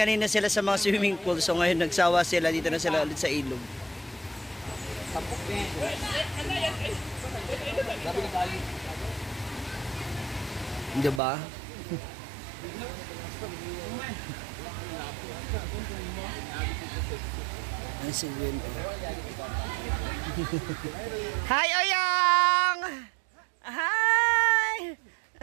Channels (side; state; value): left; drops out; at 11.2 s